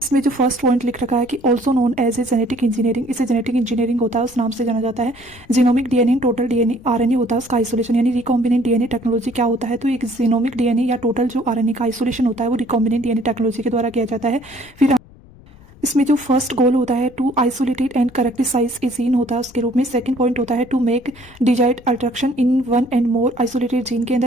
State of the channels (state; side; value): noise; left; rumble, 24 dB below the sound